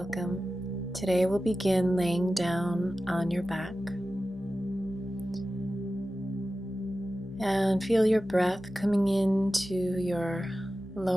Today we'll begin laying down on your back and feel your breath coming into your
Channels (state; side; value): noise; left; hum, 21 dB below the sound